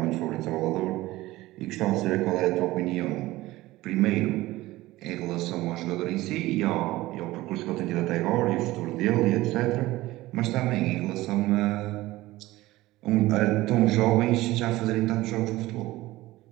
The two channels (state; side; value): quieter; left; 17.9 dB